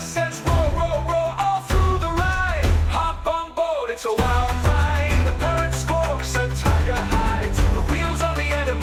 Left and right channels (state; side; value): identical; both; correlation 1.00